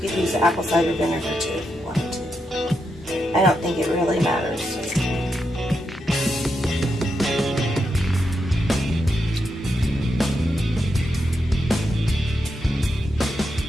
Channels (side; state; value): both; normal; correlation 0.84